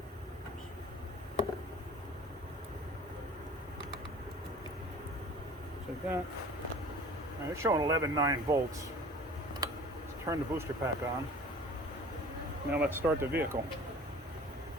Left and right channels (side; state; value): both; normal; correlation 0.44